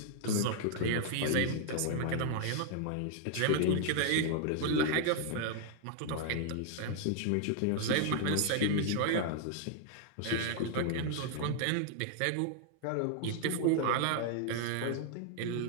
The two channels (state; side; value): different; both; correlation 0.00